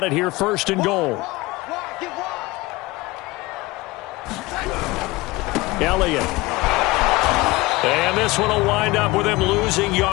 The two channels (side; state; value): right; quieter; 21.2 dB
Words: it here 1st and goal. Elliott. And this one will wind up with him losing